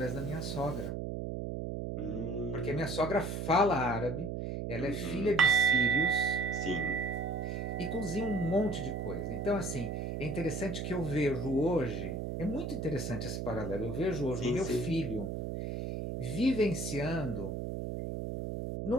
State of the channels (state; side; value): noise; right; hum, 3 dB below the sound